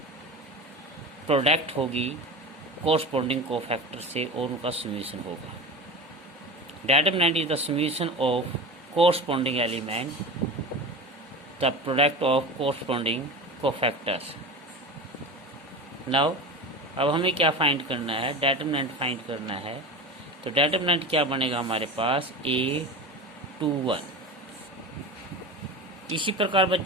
प्रोडक्ट होगी कोरस्पॉन्डिंग कोफैक्टर से और उनका समीशन होगा। Determinant is the summation of corresponding element, the product of corresponding cofactors. Now अब हमें क्या फाइंड करना है, डिटरमिनेंट फाइंड करना है। तो डिटरमिनेंट क्या बनेगा हमारे पास A21। इसी प्रकार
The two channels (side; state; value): both; normal; correlation 0.30